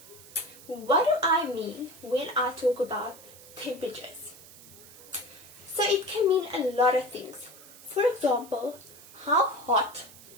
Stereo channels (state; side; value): noise; right; hiss, 19 dB below the sound